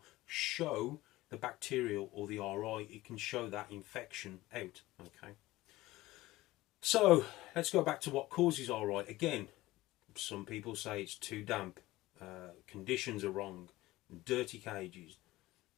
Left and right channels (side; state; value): right; quieter; 18.0 dB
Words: show the bacterial or the RI. It can show that infection out. Okay. So let's go back to what causes RI. Again, some people say it's too damp, conditions are wrong, dirty cages.